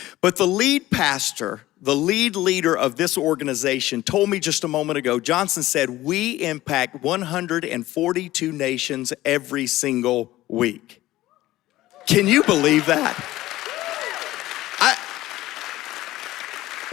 But the lead pastor, the lead leader of this organization told me just a moment ago, Johnson said, we impact 142 nations every single week. Can you believe that?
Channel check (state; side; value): quieter; right; 16.2 dB